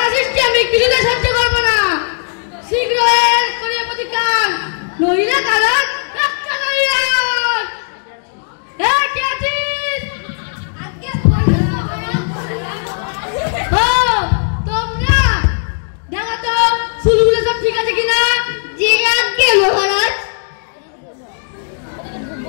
সৃষ্টি আমি কিছুতে সহ্য করবো না। শীঘ্র এর করিয়া প্রতিকার, নইলে কারণ রক্ষা করিয়া। কে আছিস? আগে তোমরা দেখো তো চুলগুলো সব ঠিক আছে কিনা? জি আজ্ঞে মহারাজ।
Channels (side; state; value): right; silent; digital silence